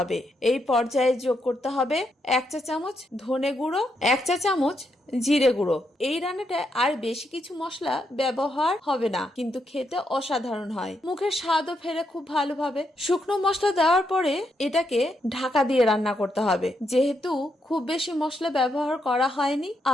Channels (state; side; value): normal; both; correlation 0.80